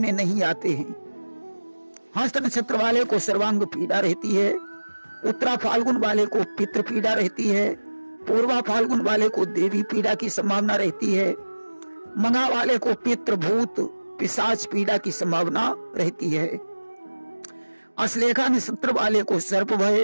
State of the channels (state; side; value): inverted; both; correlation -1.00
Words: नहीं आते हैं। हस्त नक्षत्र वाले को सर्वांग पीड़ा रहती है। उत्तरा फाल्गुन वाले को पितृ पीड़ा रहती है। पूर्वा फाल्गुन वाले को देवी पीड़ा की संभावना रहती है। मघा वाले को पितृ, भूत, पिशाच पीड़ा की संभावना रहती है। अश्लेषा नक्षत्र वाले को सर्प